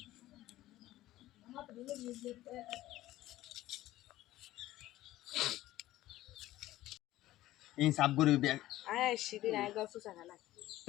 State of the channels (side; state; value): right; quieter; 15.5 dB